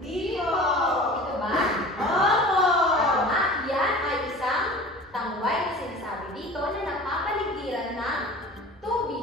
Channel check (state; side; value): normal; both; correlation 0.40